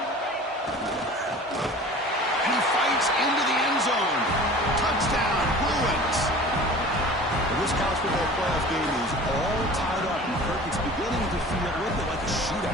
Touchdown, Bruins! This college football playoff game is all tied up, and Kirk, it's beginning to feel a little bit like a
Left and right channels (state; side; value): normal; both; correlation 0.41